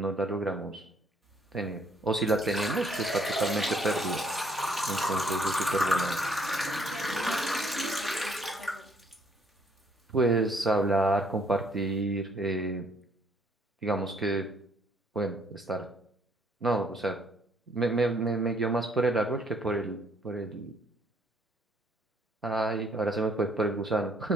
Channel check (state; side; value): normal; both; correlation 0.65